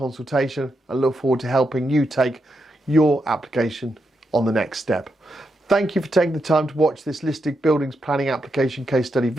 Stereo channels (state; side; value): normal; both; correlation 0.84